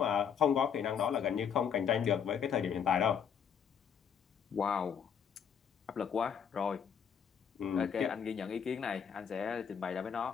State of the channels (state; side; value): quieter; right; 7.5 dB